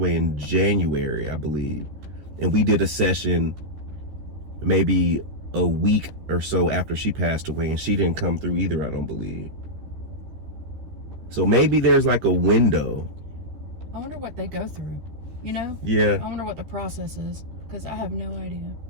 in January, I believe. And we did a session maybe a week or so after she passed away, and she didn't come through either, I don't believe. So maybe there's like a window. I wonder what they go through, you know? Yeah. I wonder what the process is, because I have no idea.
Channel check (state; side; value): late; left; 13 ms